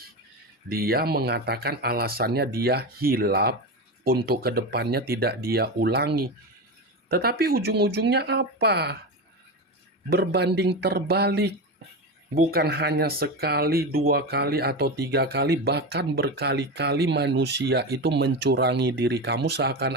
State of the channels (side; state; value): both; normal; correlation 0.20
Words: dia mengatakan alasannya dia hilaf untuk kedepannya tidak dia ulangi. Tetapi ujung-ujungnya apa? Berbanding terbalik. Bukan hanya sekali, 2 kali, atau 3 kali, bahkan berkali-kali manusia itu mencurangi diri kamu